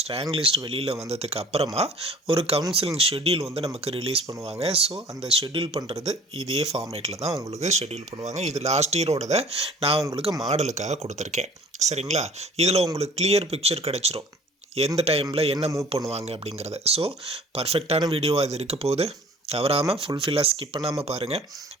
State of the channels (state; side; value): normal; both; correlation 0.49